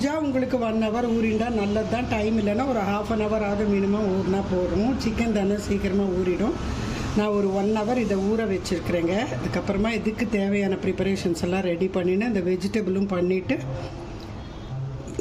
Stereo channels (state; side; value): identical; both; correlation 1.00